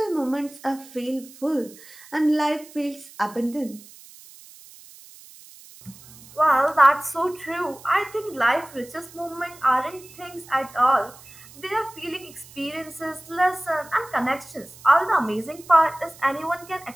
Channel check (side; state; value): right; noise; hiss, 21 dB below the sound